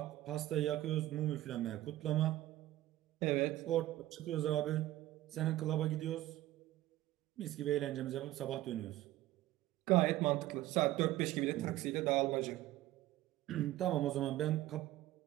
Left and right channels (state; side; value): quieter; left; 15.5 dB